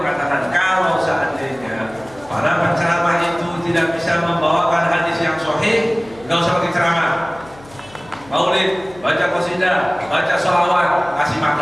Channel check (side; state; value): left; noise; hum, 23 dB below the sound